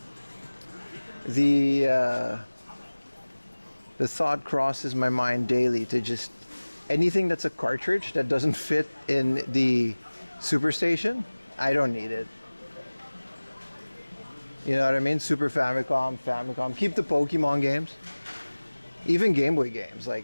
The thought crosses my mind daily to just anything that's a cartridge that doesn't fit in the Superstation, I don't need it. You know what I mean? Super Famicom. Keep the Pokemon games. Even Game Boy games.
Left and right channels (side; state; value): both; inverted; correlation -1.00